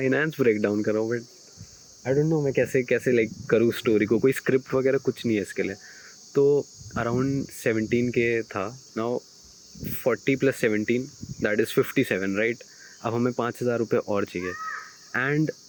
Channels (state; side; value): identical; both; correlation 1.00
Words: ब्रेक डाउन कर रहा हूँ, बट आई डोंट नो मैं कैसे कैसे लाइक करूँ स्टोरी को, कोई स्क्रिप्ट वगैरह कुछ नहीं है इसके लिए। तो अराउंड 17K था। Now 40 + 17 that is 57, right. अब हमें 5,000 रुपये और चाहिए, एंड